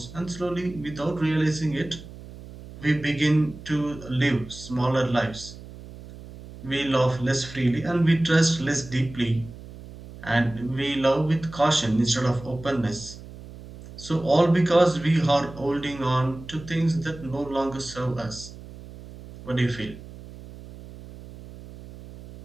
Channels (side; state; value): right; noise; hum, 16 dB below the sound